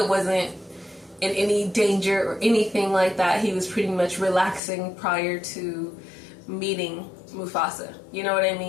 wasn't in any danger or anything like that, he was pretty much relaxing prior to meeting Mufasa. You know what I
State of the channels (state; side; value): drops out; right; at 4.6 s